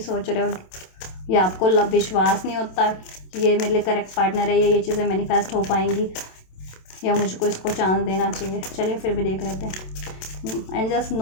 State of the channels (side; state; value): right; late; 27 ms